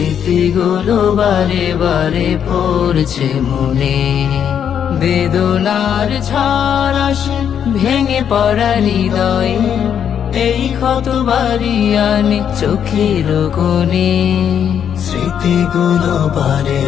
বারে বারে পড়ছে মনে, বেদনার ঝড় আসে ভেঙে পড়া হৃদয়ে, এই ক্ষত বাড়ি আনে চোখের কোণে। স্মৃতিগুলো বারে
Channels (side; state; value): right; quieter; 8.5 dB